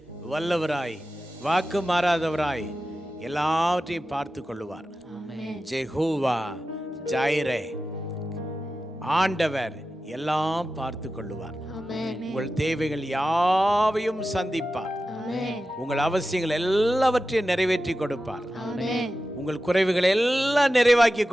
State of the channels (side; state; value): both; normal; correlation 0.93